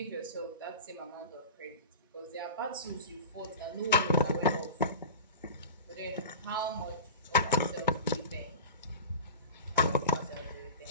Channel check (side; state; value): both; inverted; correlation -0.32